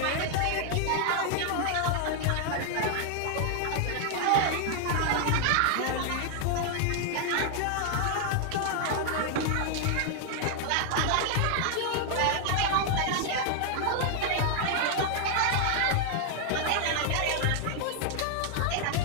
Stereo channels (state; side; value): different; both; correlation 0.00